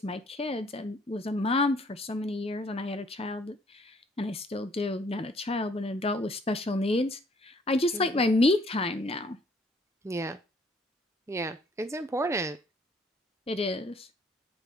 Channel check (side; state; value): both; normal; correlation 0.62